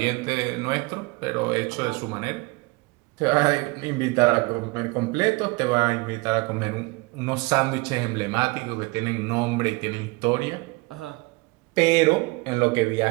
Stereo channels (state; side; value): quieter; left; 25.5 dB